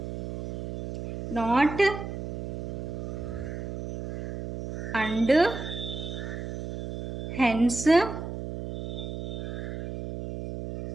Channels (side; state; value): right; noise; hum, 6 dB below the sound